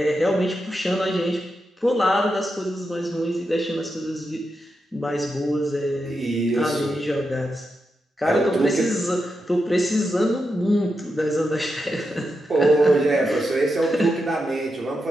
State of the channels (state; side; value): normal; both; correlation 0.87